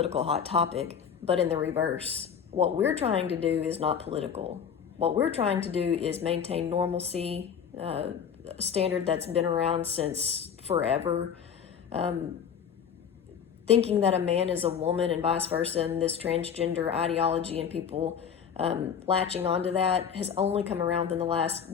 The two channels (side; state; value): right; quieter; 7.6 dB